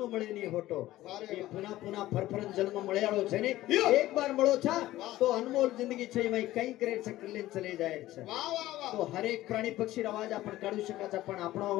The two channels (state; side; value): quieter; right; 15.7 dB